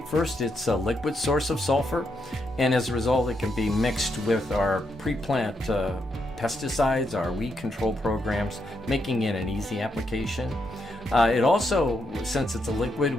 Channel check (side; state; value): both; normal; correlation 0.80